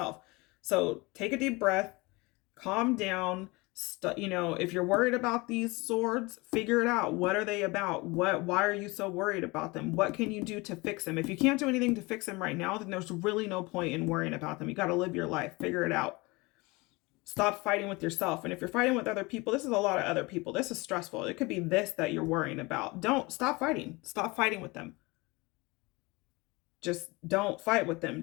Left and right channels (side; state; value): right; quieter; 24.4 dB